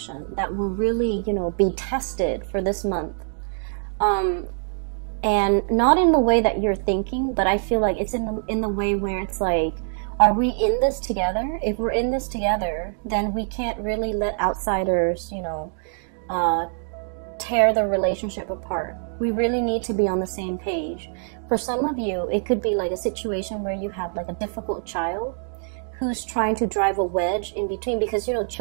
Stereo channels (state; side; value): silent; left; digital silence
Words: that will really, you know, be tested for this month. And not in the way that you're thinking, but I feel like it's in the way where it's like, are we in this together? If we're in this together, then we can't really let outsiders, you know, tear the relationship apart. We really need to be on the same page. For some of you, it could be like a situation where you have like a difficult child who's trying to drive a wedge in between, because, you know,